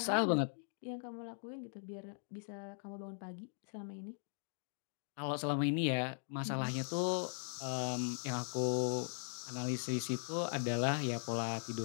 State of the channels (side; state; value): right; silent; digital silence